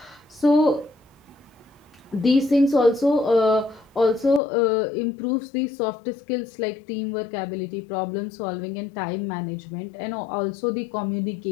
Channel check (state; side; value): drops out; right; at 4.4 s